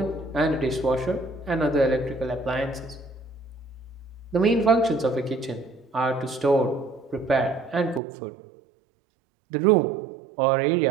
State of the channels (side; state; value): left; drops out; at 8.0 s